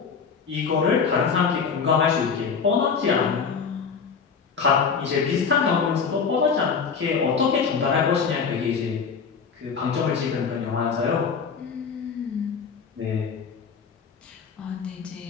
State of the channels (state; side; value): quieter; right; 5.9 dB